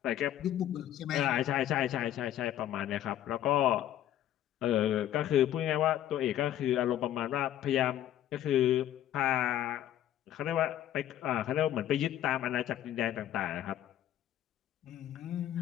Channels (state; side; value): quieter; right; 12.0 dB